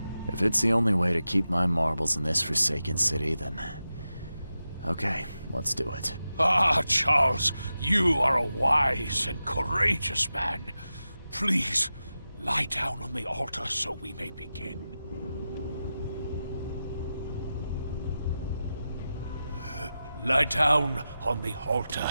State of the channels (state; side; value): inverted; both; correlation -0.92